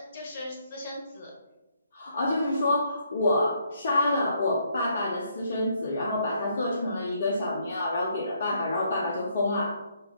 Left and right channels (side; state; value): both; inverted; correlation -0.71